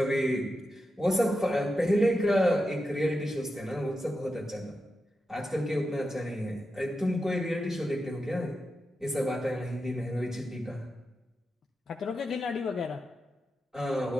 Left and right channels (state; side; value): normal; both; correlation 0.89